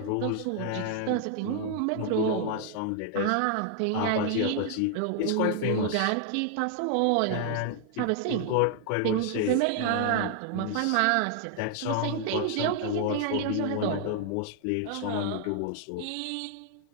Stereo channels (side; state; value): both; different; correlation 0.00